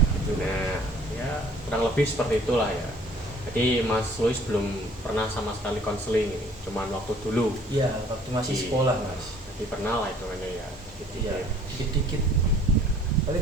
nah ya kurang lebih seperti itulah ya. Jadi Mas Luis belum pernah sama sekali konseling ini, cuman waktu dulu. Iya, waktu masih sekolah Mas. Jadi pernah lah itu kan ya. Iya, dikit-dikit. Tapi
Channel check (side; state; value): both; normal; correlation 0.54